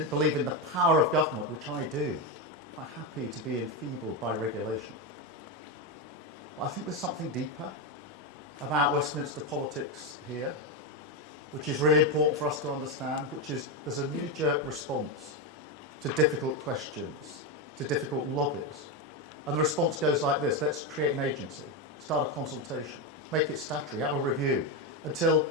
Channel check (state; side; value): normal; both; correlation 0.10